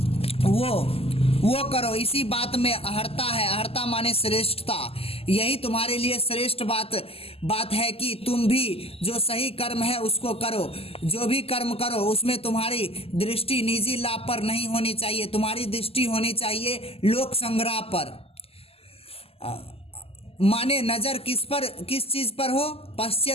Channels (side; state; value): right; late; 0.28 ms